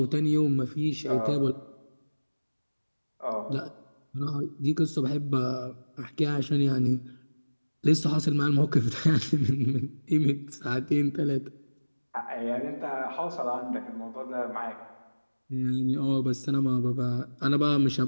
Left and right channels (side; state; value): both; inverted; correlation -1.00